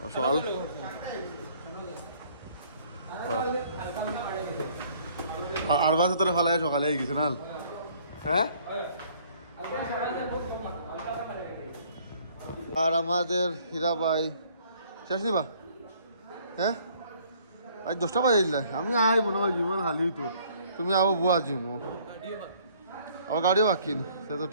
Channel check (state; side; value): inverted; both; correlation -0.60